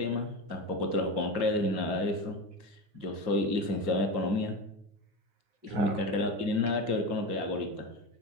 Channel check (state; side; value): late; left; 9.5 ms